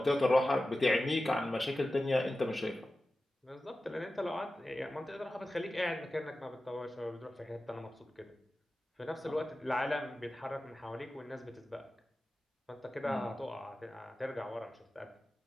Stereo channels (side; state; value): both; normal; correlation 0.94